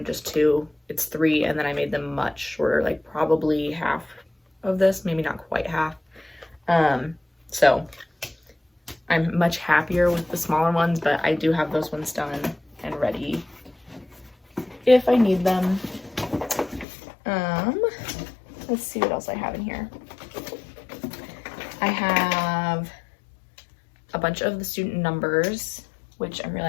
just 2, it's 3, and then I made them much shorter, like probably half of this, maybe not quite half. So I'm much happier with the smaller ones, but I do have those ones done and ready if I need them. Let's see what else I have in here. I have a bunch of the student numbers, which I'm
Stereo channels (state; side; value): drops out; right; at 16.9 s